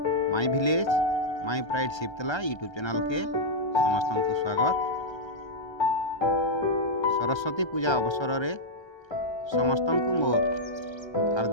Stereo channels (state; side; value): late; right; 1.3 ms